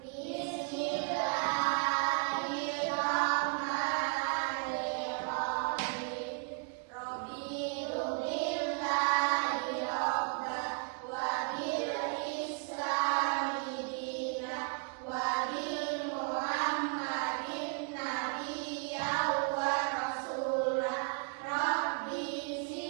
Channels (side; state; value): left; quieter; 36.8 dB